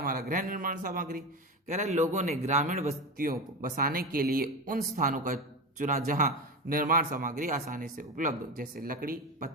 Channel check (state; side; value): normal; both; correlation 0.21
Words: हमारा गृह निर्माण सामग्री। कह रहा है लोगों ने ग्रामीण बस्तियों को बसाने के लिए उन स्थानों का चुना जहां निर्माण सामग्री आसानी से उपलब्ध हो, जैसे लकड़ी,